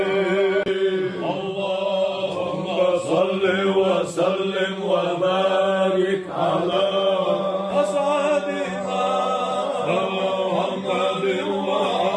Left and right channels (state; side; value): identical; both; correlation 1.00